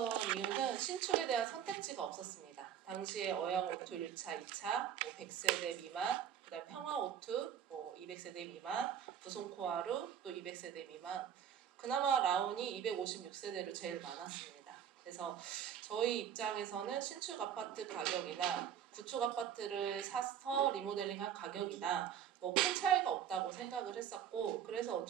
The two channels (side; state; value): left; quieter; 9.2 dB